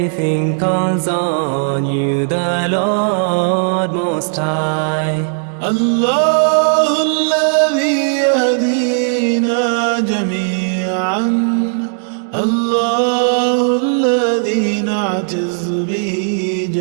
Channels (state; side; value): silent; left; digital silence